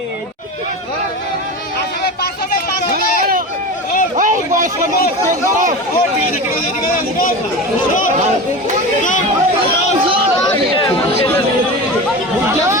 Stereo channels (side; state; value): both; normal; correlation 0.28